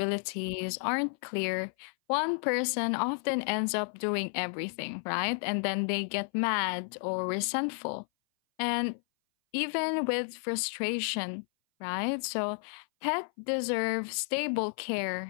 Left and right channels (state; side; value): silent; right; 57 dB below the other